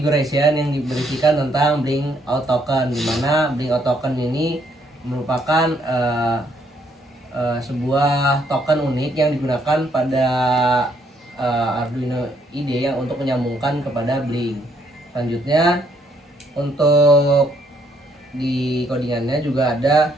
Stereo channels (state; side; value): normal; both; correlation 0.70